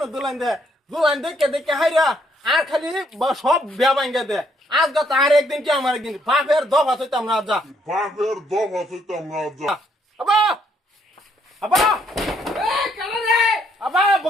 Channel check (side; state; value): both; normal; correlation 0.70